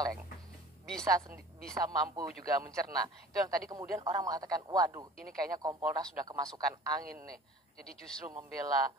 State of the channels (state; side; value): normal; both; correlation 0.45